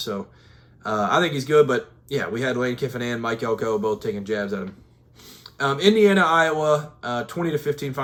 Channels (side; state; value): both; identical; correlation 1.00